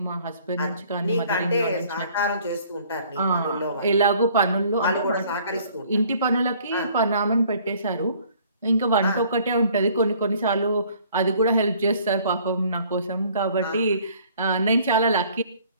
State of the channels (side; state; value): both; inverted; correlation -0.57